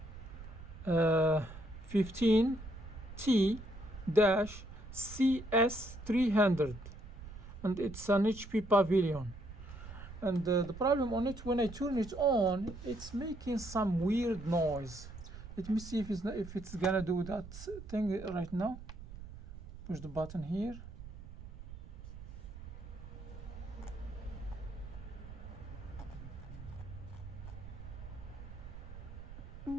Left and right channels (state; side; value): noise; right; rumble, 13 dB below the sound